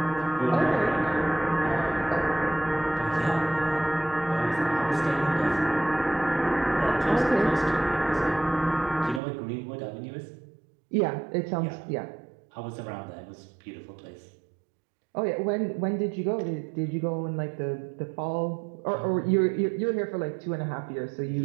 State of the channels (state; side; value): drops out; left; at 9.2 s